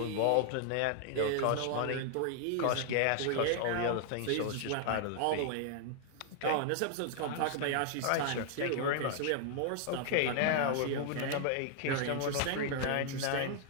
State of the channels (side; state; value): both; different; correlation 0.00